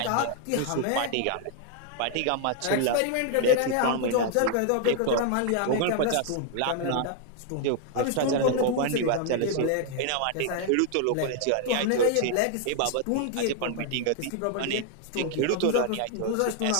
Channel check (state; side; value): different; both; correlation 0.00